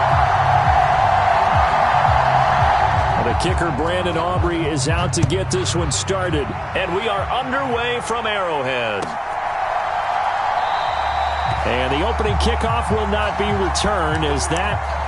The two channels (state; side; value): identical; both; correlation 1.00